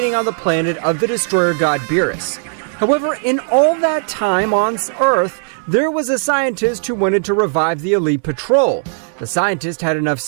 on the planet of the destroyer god Beerus. However, in all that time on Earth, there was a scientist who wanted to revive the Elite Patrol. The scientist had enough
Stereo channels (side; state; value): left; silent; digital silence